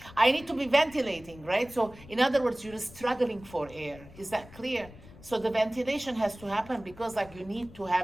I need to be ventilating, right? So in other words, you're struggling for air. Is that clear? So the ventilation has to happen because like you need to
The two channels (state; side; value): noise; left; rumble, 20 dB below the sound